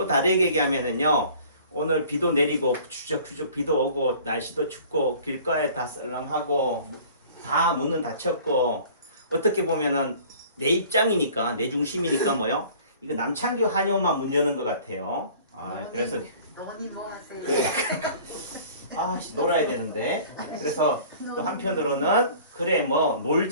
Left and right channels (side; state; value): both; inverted; correlation -0.48